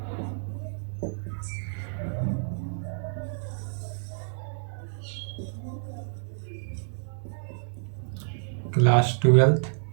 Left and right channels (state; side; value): silent; left; 58 dB below the other